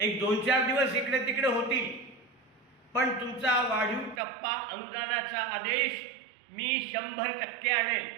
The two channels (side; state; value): left; drops out; at 4.2 s